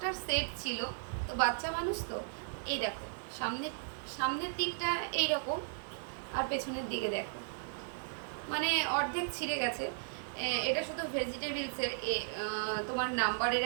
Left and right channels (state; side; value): silent; left; digital silence